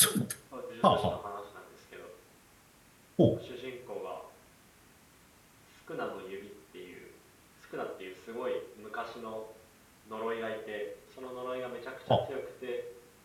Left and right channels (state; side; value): identical; both; correlation 1.00